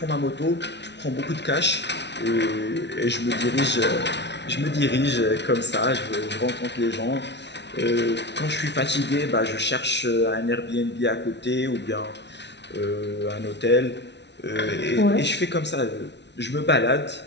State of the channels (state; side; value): late; right; 0.50 ms